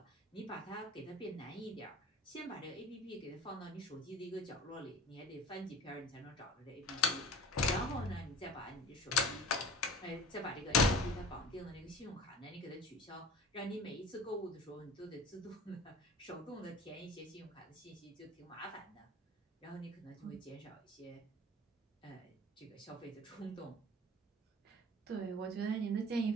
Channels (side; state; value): both; normal; correlation 0.41